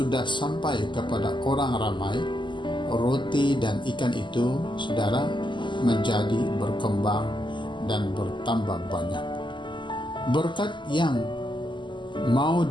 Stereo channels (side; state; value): right; late; 0.23 ms